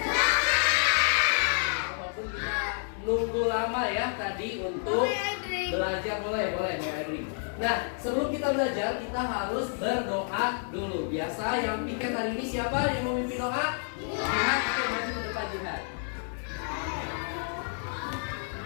Walaupun kita nunggu lama ya tadi untuk belajar. Boleh Adri. Nah, sebelum kita belajar, kita harus berdoa dulu. Biasa yang piket hari ini siapa yang mau memimpin doa? Jihad, oke, maju ke depan Jihad.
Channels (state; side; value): silent; right; 58 dB below the other